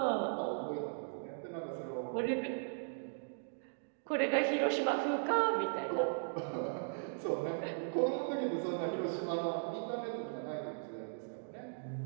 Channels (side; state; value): left; silent; digital silence